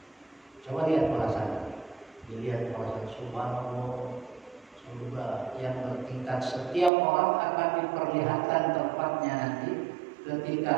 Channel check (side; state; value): left; drops out; at 6.9 s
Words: Coba lihat perasaan. Dilihat perasaan subhanallah, surga yang bertingkat. Setiap orang akan diperlihatkan tempatnya nanti